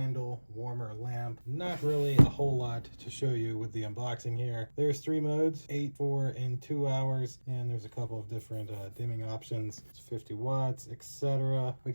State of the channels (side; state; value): both; inverted; correlation -1.00